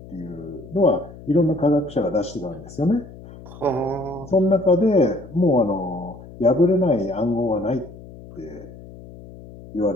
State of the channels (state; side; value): noise; left; hum, 17 dB below the sound